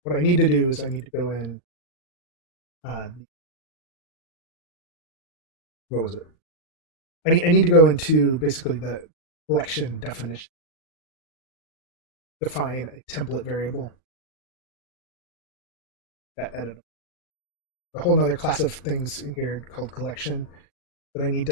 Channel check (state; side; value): late; right; 39 ms